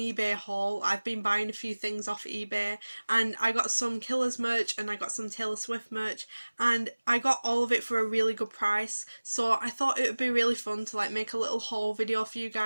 haul. I've been buying a few things off eBay and I got some Killers merch and I got some Taylor Swift merch and I got all of it for a really good price. So I thought it would be really fun to make a little haul video for you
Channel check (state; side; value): inverted; both; correlation -1.00